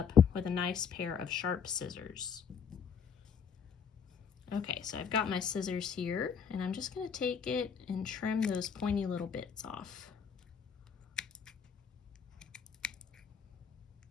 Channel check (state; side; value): quieter; right; 6.9 dB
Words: with a nice pair of sharp scissors. Okay, so I've got my scissors here, and I'm just going to take it and trim those pointy little bits off.